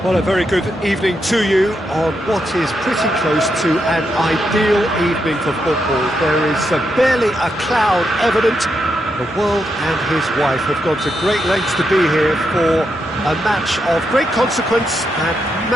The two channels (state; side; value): normal; both; correlation 0.82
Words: Well, a very good evening to you on what is pretty close to an ideal evening for football. There is barely a cloud evident. The world and his wife have gone to great lengths to be here for a match of great consequence and